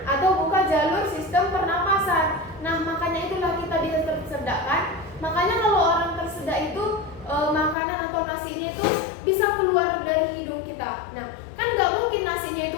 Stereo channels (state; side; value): drops out; right; at 7.8 s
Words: atau buka jalur sistem pernapasan. Nah, makanya itulah kita bisa tersedak kan? Makanya kalau orang tersedak itu makanan atau nasinya itu bisa keluar dari hidung kita. Nah, kan nggak mungkin nasinya itu